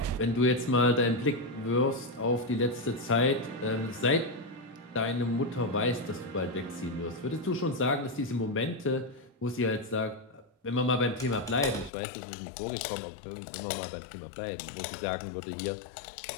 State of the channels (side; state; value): right; drops out; at 11.9 s